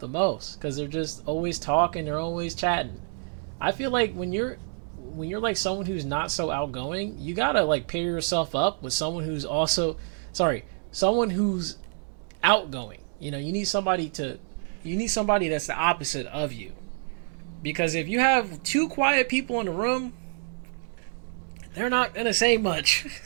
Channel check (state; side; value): silent; left; 59 dB below the other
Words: the most, because they're just always talking, they're always chatting. I feel like when you're like someone who's not so outgoing, you gotta like pair yourself up with someone who's someone who's outgoing. You need somebody that's the opposite of you. Because if you have two quiet people in the room, they're not gonna say much.